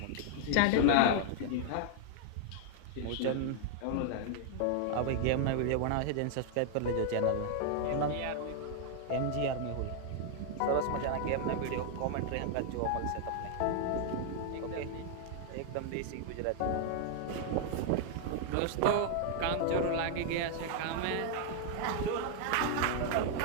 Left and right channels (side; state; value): both; different; correlation -0.01